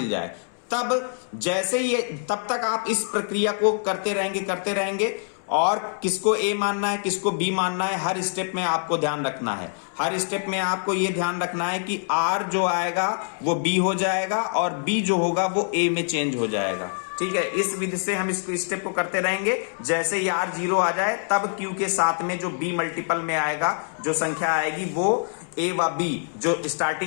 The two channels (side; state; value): right; silent; 62 dB below the other